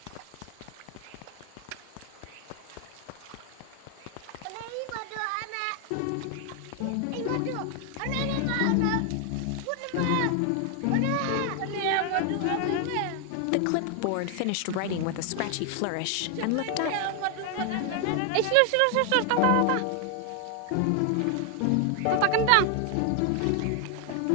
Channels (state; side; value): different; both; correlation 0.00